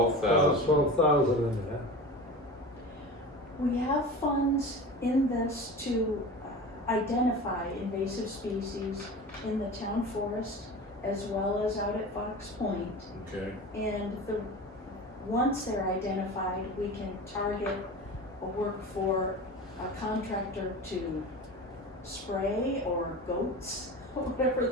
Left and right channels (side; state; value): both; normal; correlation 0.32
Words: 12,000 in there. We have funds in this to identify invasive species in the town forest as well as out at Fox Point. Okay, And once they're identified, we can target or work for a contractor to spray or goats, whatever